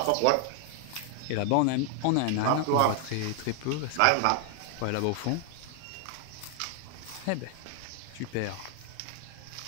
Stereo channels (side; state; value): both; different; correlation 0.00